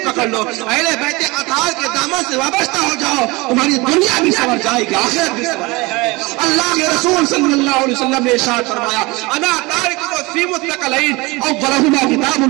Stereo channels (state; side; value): quieter; left; 23.9 dB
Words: پکڑ لو, اہل بیت اطہار کے دامن سے وابستہ ہو جاؤ, تمہاری دنیا بھی سنور جائے گی, آخرت بھی سنور جائے گی. اللہ کے رسول صلی اللہ علیہ وسلم نے ارشاد فرمایا انا تارک فی متقلین اولہما کتاب